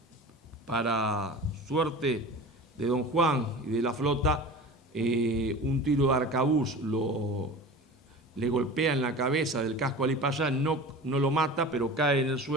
Para suerte de don Juan y de la flota, un tiro de arcabuz le golpea en la cabeza del casco a Ali Pasha, no lo mata, pero cae en el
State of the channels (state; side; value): normal; both; correlation 0.36